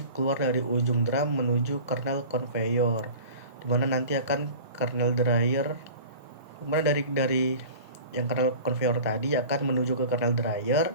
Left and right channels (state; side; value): inverted; both; correlation -0.40